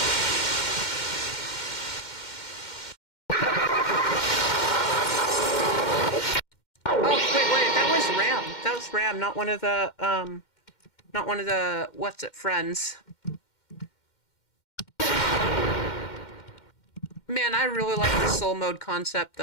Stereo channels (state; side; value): late; right; 2.1 ms